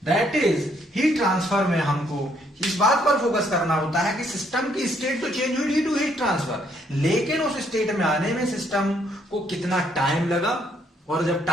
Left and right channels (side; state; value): both; normal; correlation 0.69